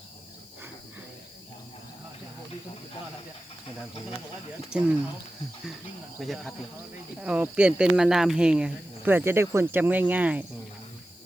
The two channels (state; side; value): noise; left; hiss, 24 dB below the sound